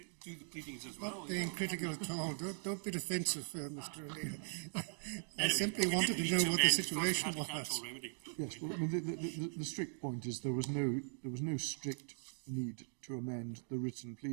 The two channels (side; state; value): left; silent; digital silence